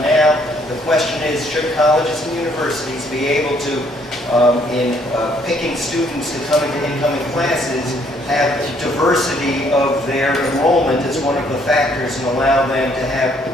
now. The question is, should colleges and universities be able to in picking students to come into incoming classes, have diversity of their enrollment as one of the factors and allow them to have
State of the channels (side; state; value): both; normal; correlation 0.66